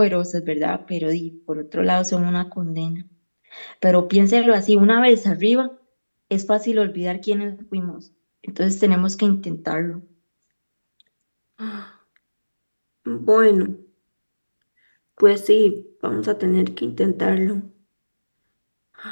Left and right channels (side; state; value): both; inverted; correlation -1.00